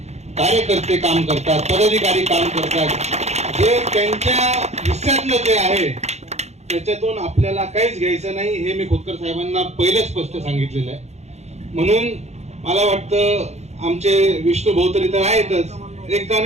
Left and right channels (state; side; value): late; left; 0.32 ms